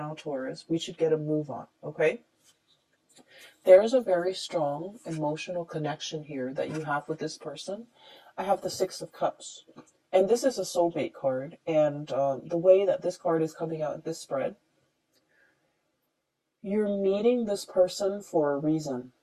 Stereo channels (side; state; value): both; identical; correlation 1.00